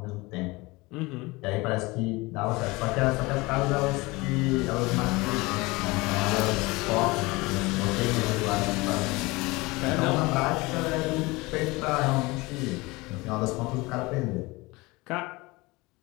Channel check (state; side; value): quieter; right; 23.2 dB